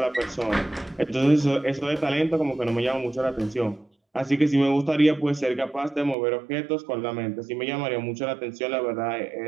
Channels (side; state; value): left; drops out; at 6.2 s